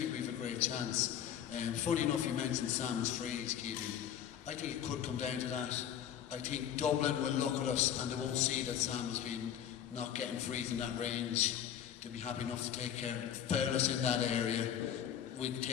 we've a great chance. Funny enough, you mentioned Sam's freeze, Keegan. I think it could come down to that. I think Dublin will look at us and they won't see that Sam has been not getting frees in that range. They'll be happy enough to take care, foul us in that area. We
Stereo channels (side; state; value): right; quieter; 9.6 dB